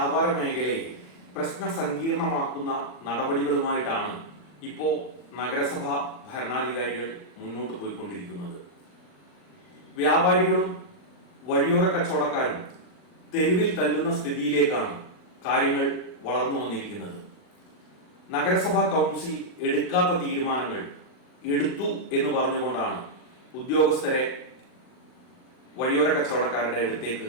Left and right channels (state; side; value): late; right; 39 ms